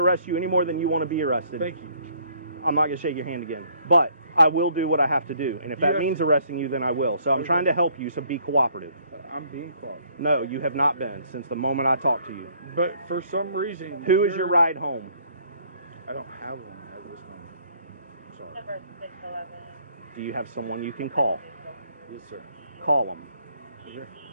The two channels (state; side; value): inverted; both; correlation -0.63